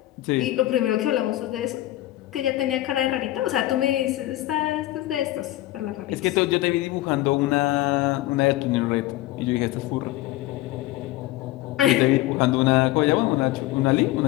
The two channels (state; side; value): quieter; right; 16.2 dB